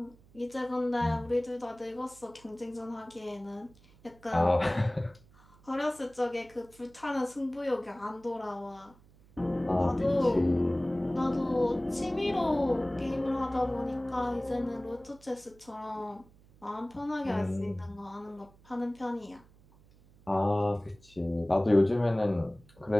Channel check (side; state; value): right; noise; hum, 27 dB below the sound